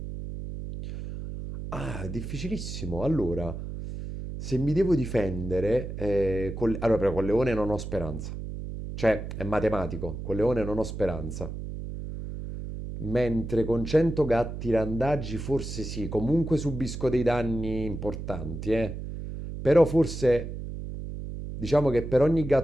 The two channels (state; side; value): noise; right; hum, 7 dB below the sound